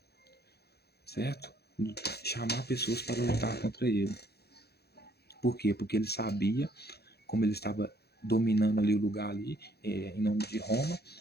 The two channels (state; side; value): late; right; 0.47 ms